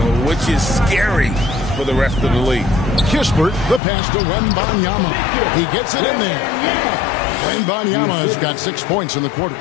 which is scary for the rest of the league. Kispert, the pass to Wembanyama. He gets it in there. Wembanyama has got 6 points in the quarter.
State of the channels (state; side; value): drops out; right; at 3.8 s